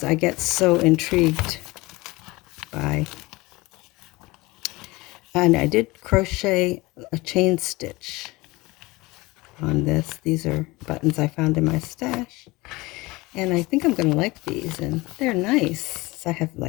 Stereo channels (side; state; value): right; quieter; 22.1 dB